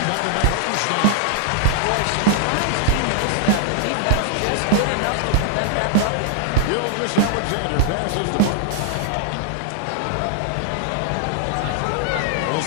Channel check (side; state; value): both; different; correlation 0.00